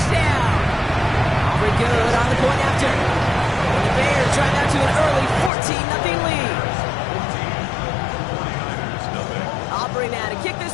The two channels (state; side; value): drops out; right; at 5.5 s